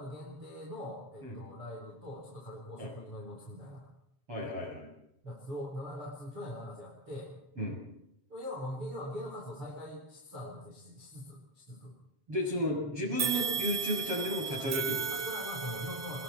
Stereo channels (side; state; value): left; late; 7.5 ms